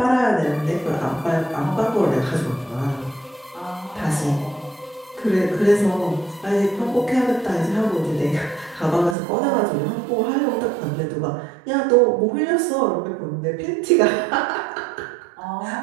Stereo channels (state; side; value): drops out; left; at 9.2 s